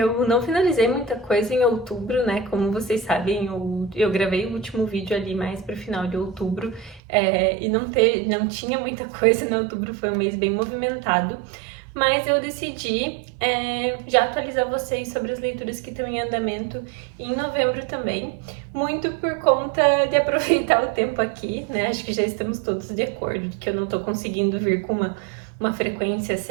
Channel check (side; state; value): left; drops out; at 7.0 s